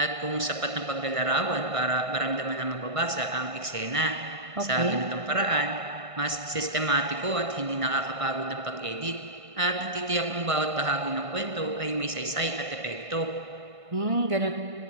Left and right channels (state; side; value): late; left; 1.5 ms